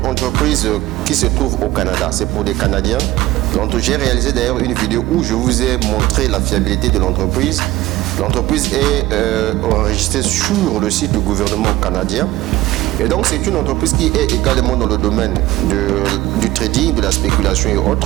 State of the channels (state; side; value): quieter; left; 17.1 dB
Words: entreprise qui se trouve au Canada. C'est pour des Canadiens. J'ai réalisé d'ailleurs une vidéo où je vous ai montré la fiabilité de l'entreprise. L'entreprise est enregistrée sur le site du gouvernement canadien. Et donc c'est une entreprise qui est également dans le domaine du trading, de la spéculation et